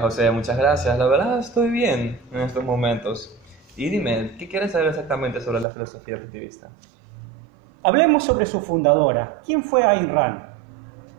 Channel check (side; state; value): left; drops out; at 5.7 s